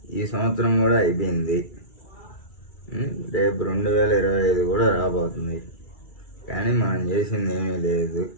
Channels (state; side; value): late; right; 2.3 ms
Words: ఈ సంవత్సరం కూడా అయిపోయింది. రేపు 2025 కూడా రాబోతుంది. కానీ మనం చేసింది ఏమీ లేదు